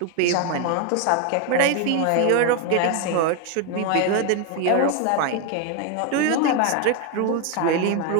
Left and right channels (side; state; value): both; different; correlation 0.01